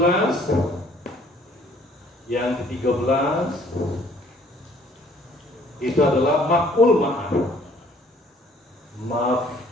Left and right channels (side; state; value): both; normal; correlation 0.59